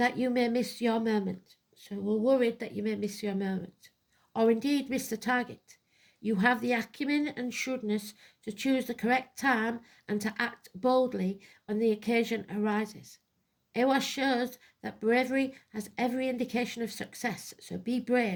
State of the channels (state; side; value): identical; both; correlation 1.00